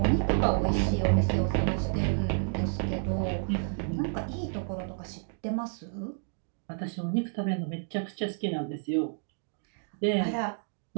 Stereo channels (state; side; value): silent; left; digital silence